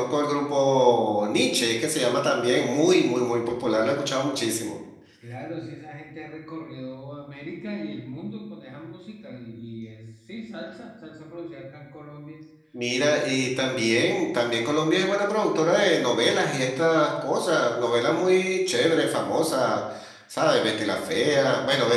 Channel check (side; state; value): both; identical; correlation 1.00